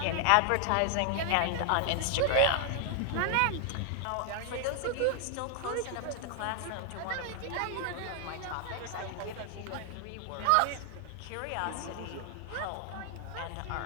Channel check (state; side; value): different; both; correlation 0.00